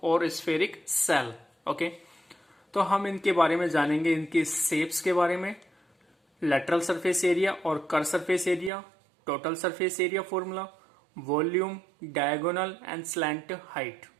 और spheric cell. Okay तो हम इनके बारे में जानेंगे, इनके shapes के बारे में, लेटरल सरफेस एरिया और curve surface area, total surface area formula, volume, diagonal and slant height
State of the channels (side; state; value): left; drops out; at 8.7 s